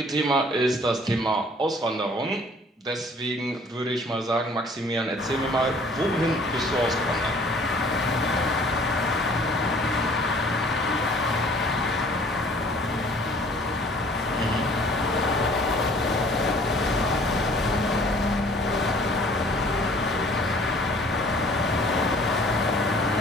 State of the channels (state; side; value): normal; both; correlation 0.54